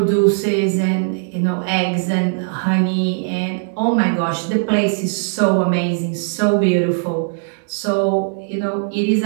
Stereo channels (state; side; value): silent; left; digital silence